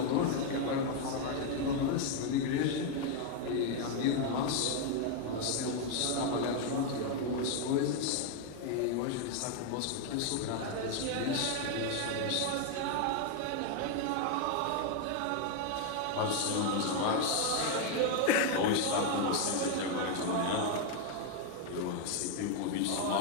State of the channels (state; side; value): different; both; correlation 0.01